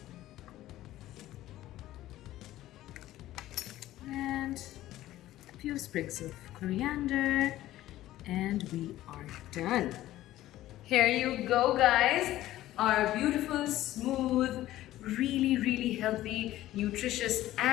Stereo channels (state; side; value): quieter; right; 14.8 dB